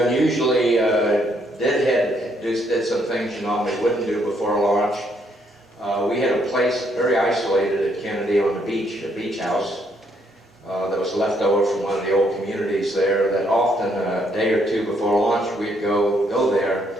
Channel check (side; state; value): both; normal; correlation 0.71